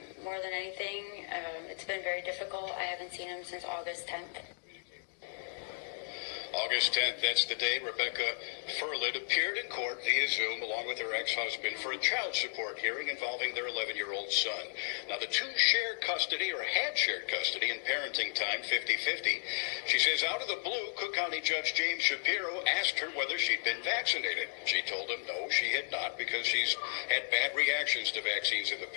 more than anything. It's been very difficult. I haven't seen him since August 10th. August 10th, that's the day Rebecca Furlid appeared in court via Zoom along with her ex-husband for a child support hearing involving their 11-year-old son. Now, the two share custody, or had shared custody in parenting time, 50-50. She says out of the blue, Cook County Judge James Shapiro asked her whether she'd been vaccinated. She told him no, she had not, because she's had bad reactions to vaccines in the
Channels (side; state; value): right; silent; digital silence